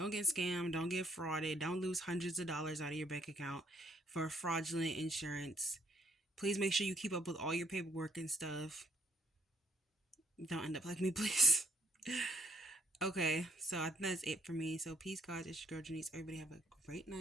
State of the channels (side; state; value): both; normal; correlation 0.68